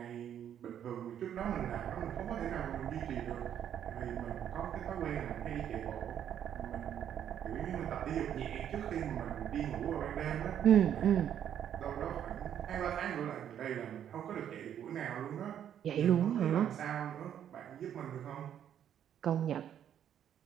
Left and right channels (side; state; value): left; quieter; 9.7 dB